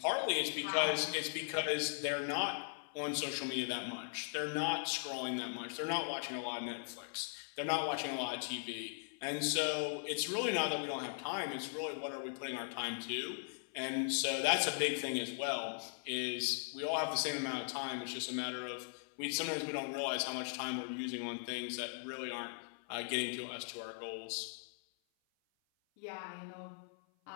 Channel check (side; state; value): right; silent; 52 dB below the other